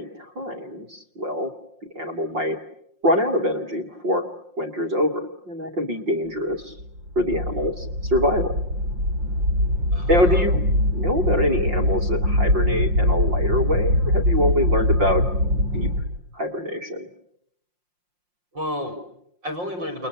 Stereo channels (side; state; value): left; late; 5.6 ms